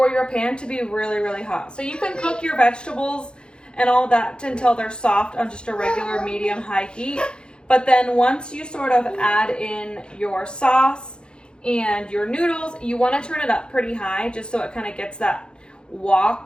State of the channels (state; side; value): late; right; 0.051 ms